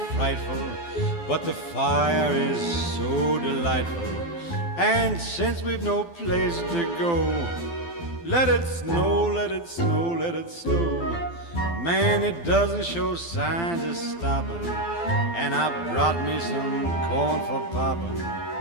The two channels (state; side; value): late; right; 12 ms